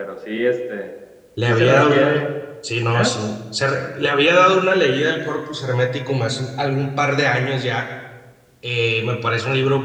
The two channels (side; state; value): both; identical; correlation 1.00